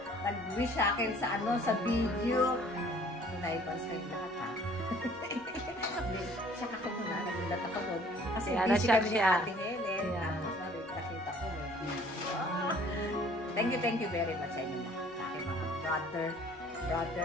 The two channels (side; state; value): both; normal; correlation 0.55